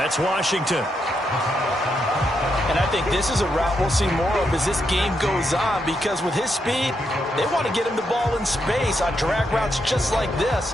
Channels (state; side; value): normal; both; correlation 0.81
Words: Washington. And I think this is a route we'll see more of as this game goes on, because with his speed, they want to get him the ball in space on drag routes just like